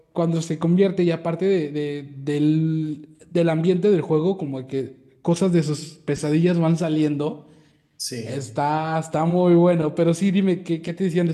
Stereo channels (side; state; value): both; identical; correlation 1.00